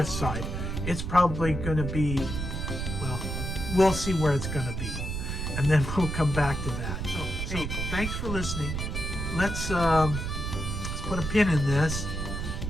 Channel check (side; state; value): right; noise; rumble, 3 dB below the sound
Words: side. It's probably going to be, well, we'll see where it's going to be, and then we'll come back to that. So hey, thanks for listening. Let's put a pin in this